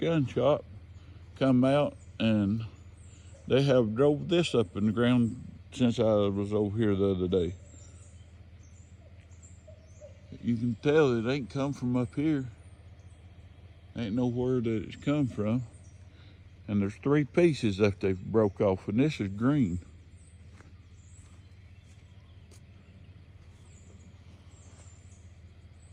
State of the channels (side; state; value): both; identical; correlation 1.00